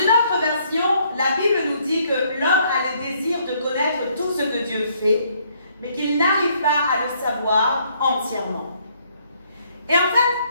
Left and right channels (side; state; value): both; inverted; correlation -0.67